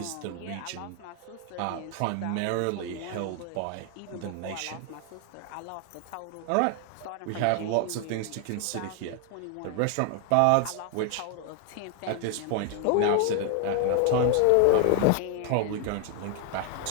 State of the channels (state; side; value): different; both; correlation 0.00